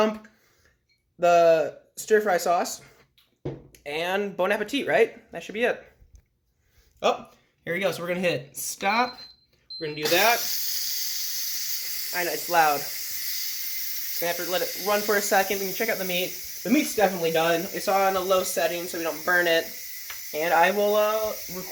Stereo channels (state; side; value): identical; both; correlation 1.00